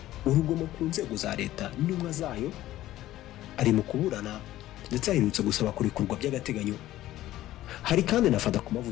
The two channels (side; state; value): right; quieter; 14.7 dB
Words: urugomo ku nzego za leta n'intumwa zayo, ari mu kuburana ndetse aherutse gusaba kurekurwa by'agateganyo. Hari kandi nafata ku